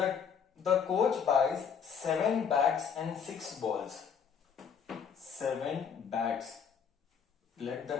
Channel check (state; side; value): quieter; right; 7.1 dB